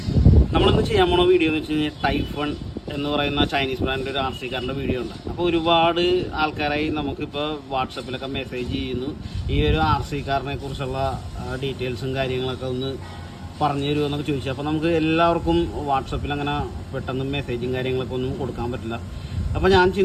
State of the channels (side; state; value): both; identical; correlation 1.00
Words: നമ്മളിന്ന് ചെയ്യാൻ പോണ വീഡിയോ എന്ന് വെച്ച് കഴിഞ്ഞാൽ ടൈഫൺ എന്ന് പറയുന്ന ചൈനീസ് ബ്രാൻഡിൻ്റെ ഒരു ആർ സി കാറിൻ്റെ വീഡിയോ ഉണ്ട്. അപ്പോൾ ഒരുപാട് ആൾക്കാരായി നമുക്കിപ്പോൾ വാട്സപ്പിലൊക്കെ മെസ്സേജ് ചെയ്യുന്നു, ഈ ഒരു ആർ സി കാറിനെ കുറിച്ചുള്ള ഡീറ്റെയിൽസും കാര്യങ്ങളൊക്കെ ഒന്ന് പറഞ്ഞു തരുമോ എന്നൊക്കെ ചോദിച്ചു. അപ്പോൾ നമുക്ക് എല്ലാവർക്കും വാട്സപ്പിൽ അങ്ങനെ പെട്ടെന്ന് മെസ്സേജും കാര്യങ്ങളൊക്കെ ഒന്നും കൊടുക്കാൻ പറ്റില്ല. അപ്പോൾ ഞാൻ